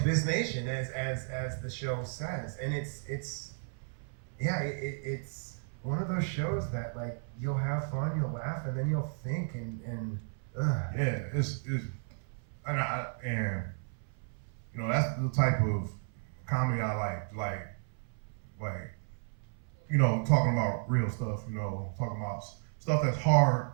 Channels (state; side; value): silent; left; 55 dB below the other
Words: nation, as the show says. And it's one of those shows that like you'll have fun, you'll laugh, and then you'll think and yeah, it's and you know, that's the type of comedy I like, you know, talking about real stuff, you know, talking about stuff that's